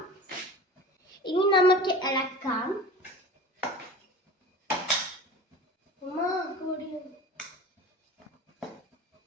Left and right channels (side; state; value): both; normal; correlation 0.37